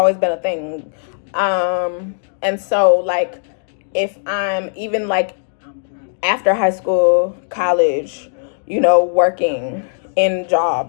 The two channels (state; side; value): silent; right; digital silence